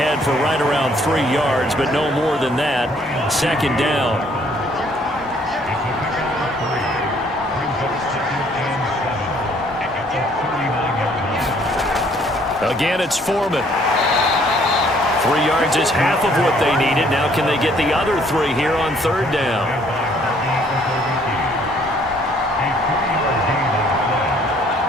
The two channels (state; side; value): normal; both; correlation 0.62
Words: for right around 3 yards, but no more than that. 2nd down. Again, it's Fheman. 3 yards is half of what they needed. Now can they get the other 3 here on 3rd down?